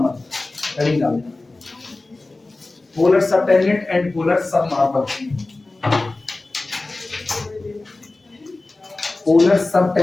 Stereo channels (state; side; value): quieter; right; 3.2 dB